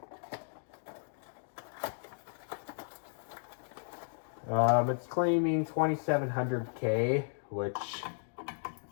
It's claiming 2700K, which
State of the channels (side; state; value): right; silent; digital silence